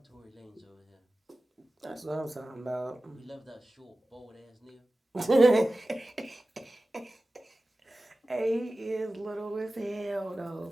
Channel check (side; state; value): both; normal; correlation 0.96